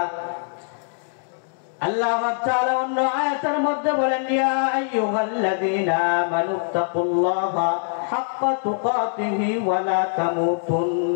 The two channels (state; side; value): silent; right; digital silence